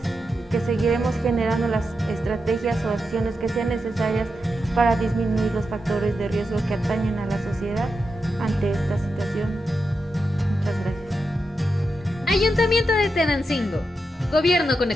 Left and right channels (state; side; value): normal; both; correlation 0.87